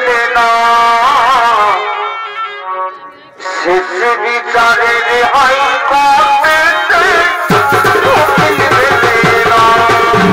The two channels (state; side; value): identical; both; correlation 1.00